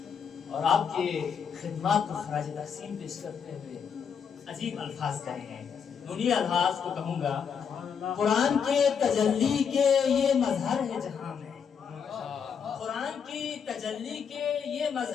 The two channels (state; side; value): quieter; right; 6.9 dB